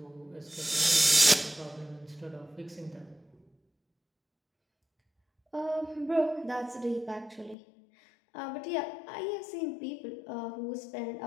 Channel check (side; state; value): right; drops out; at 7.6 s